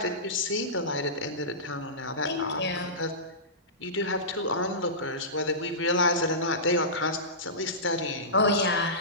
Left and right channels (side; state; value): both; normal; correlation -0.20